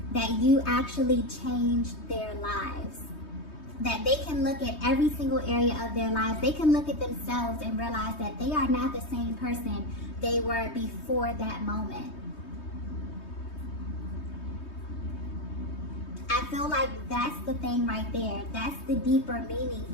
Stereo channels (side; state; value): right; late; 3.2 ms